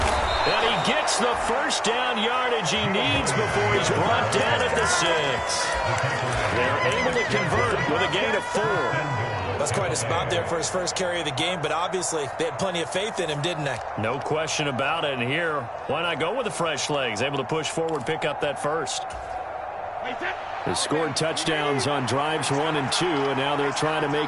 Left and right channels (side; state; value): both; identical; correlation 1.00